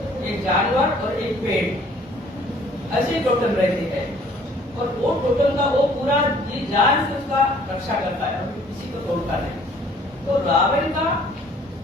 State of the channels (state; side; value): normal; both; correlation 0.57